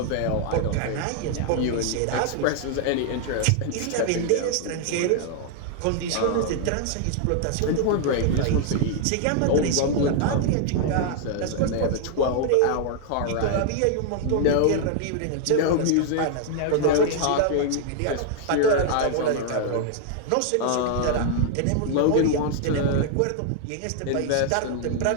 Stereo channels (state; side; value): different; both; correlation 0.00